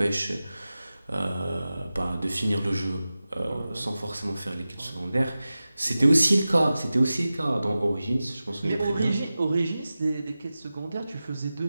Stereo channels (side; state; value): both; inverted; correlation -0.95